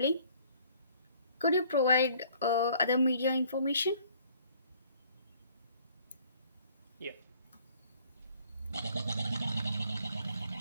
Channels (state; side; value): inverted; both; correlation -0.58